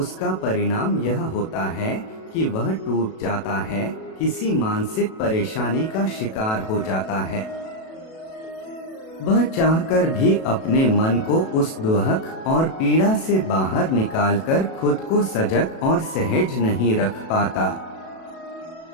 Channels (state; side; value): late; right; 37 ms